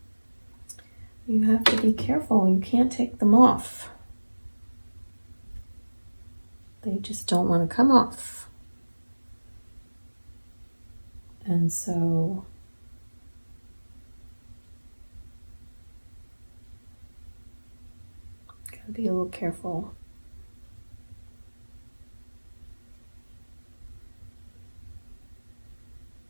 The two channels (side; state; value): both; inverted; correlation -1.00